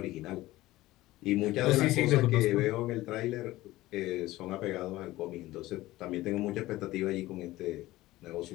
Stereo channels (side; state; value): right; quieter; 17.4 dB